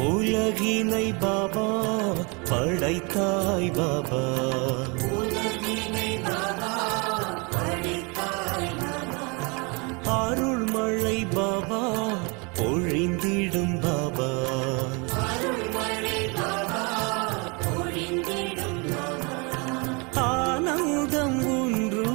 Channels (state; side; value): quieter; left; 30.6 dB